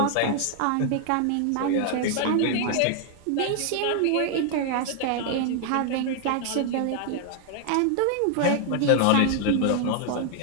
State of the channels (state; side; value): different; both; correlation 0.00